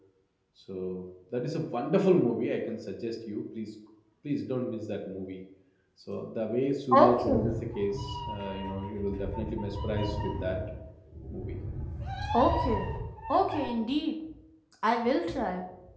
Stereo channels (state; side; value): identical; both; correlation 1.00